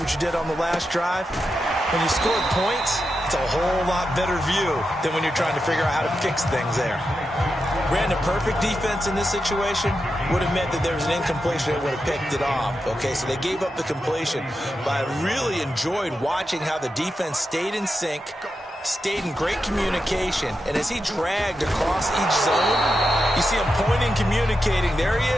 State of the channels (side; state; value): both; normal; correlation 0.88